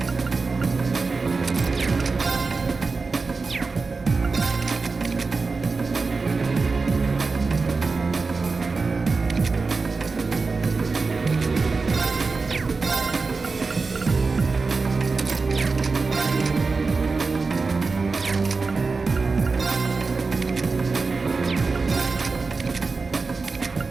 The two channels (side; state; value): left; quieter; 4.2 dB